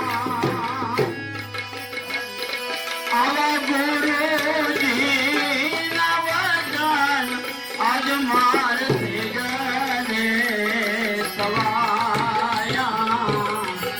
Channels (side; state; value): both; identical; correlation 1.00